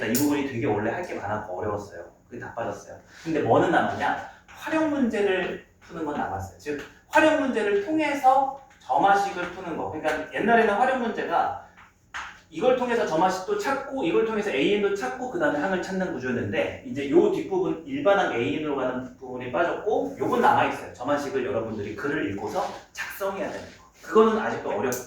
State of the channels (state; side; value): identical; both; correlation 1.00